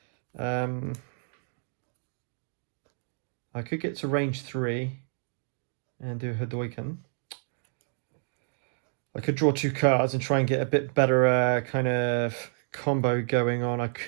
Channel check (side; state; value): left; silent; digital silence